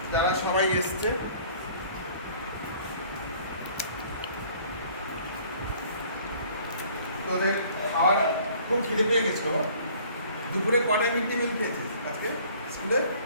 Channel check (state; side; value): inverted; both; correlation -0.54